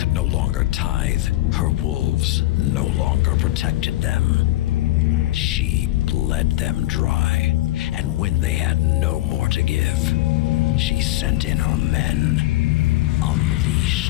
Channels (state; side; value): quieter; right; 16.9 dB